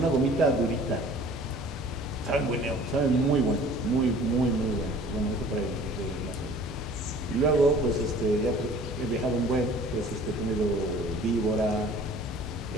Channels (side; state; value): both; normal; correlation 0.49